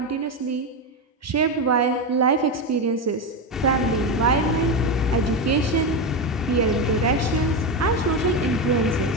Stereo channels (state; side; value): normal; both; correlation 0.13